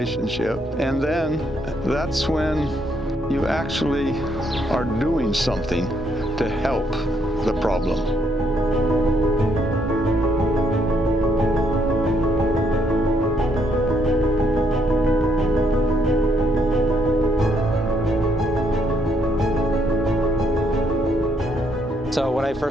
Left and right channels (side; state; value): both; normal; correlation 0.73